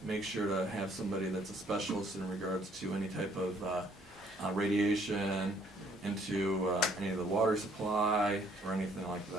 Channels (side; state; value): both; normal; correlation 0.63